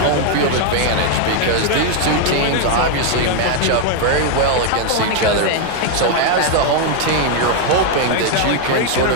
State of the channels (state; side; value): different; both; correlation 0.00